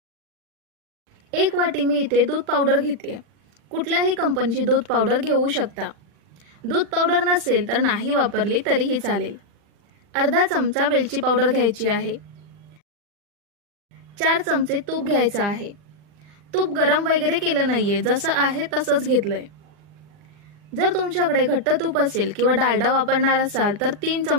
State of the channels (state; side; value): late; left; 40 ms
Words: 1 वाटी मी इथे दूध पावडर घेते। कुठल्याही कंपनीची दूध पावडर घेऊ शकता। दूध पावडर नसेल तर नाही वापरली तरीही चालेल। अर्धा चमचा वेलची पावडर घ्यायची आहे। 4 चमचे तूप घ्यायचं आहे। तूप गरम वगैरे केलं नाहीये, जसं आहे तसंच घेतलंय। जर तुमच्याकडे घट्ट तूप असेल किंवा डालडा वापरणार असाल तर 3